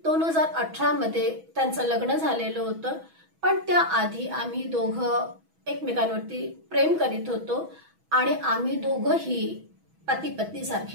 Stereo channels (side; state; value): left; late; 6.1 ms